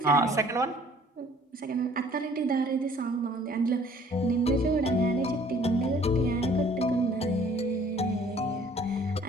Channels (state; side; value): normal; both; correlation 0.56